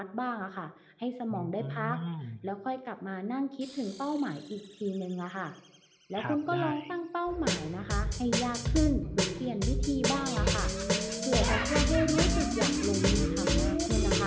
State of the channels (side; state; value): both; identical; correlation 1.00